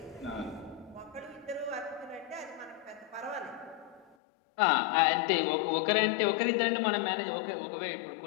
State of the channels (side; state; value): right; drops out; at 4.2 s